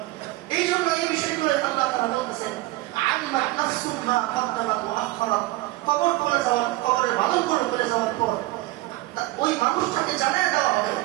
এই জন্য এই বিষয়গুলো আল্লাহ তাআলা বলতেছেন আলিমাত নাফসুম মা কদ্দামাত ওয়া আখখারাত। কবর করে যাওয়ার, কবরের বাদন করে যাওয়ার পর ওই মানুষটাকে জানিয়ে দেওয়া হবে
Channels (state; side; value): quieter; left; 18.5 dB